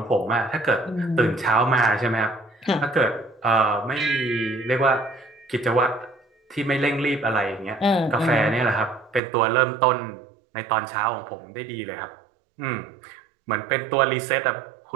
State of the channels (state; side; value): drops out; left; at 9.2 s